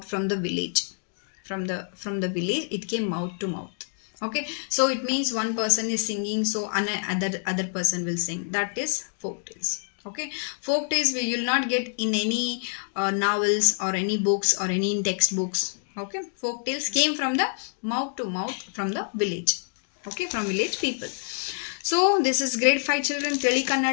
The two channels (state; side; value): silent; right; digital silence